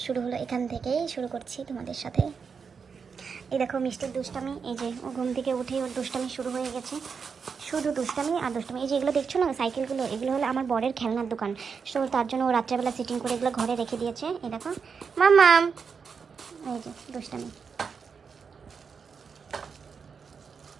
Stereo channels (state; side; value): quieter; left; 5.9 dB